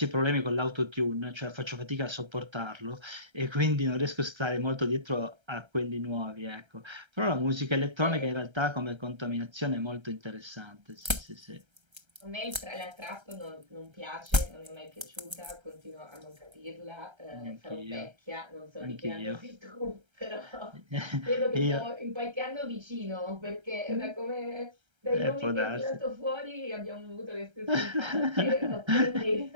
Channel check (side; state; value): left; late; 1.3 ms